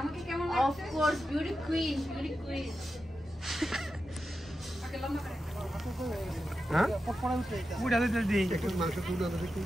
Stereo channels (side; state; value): both; normal; correlation 0.90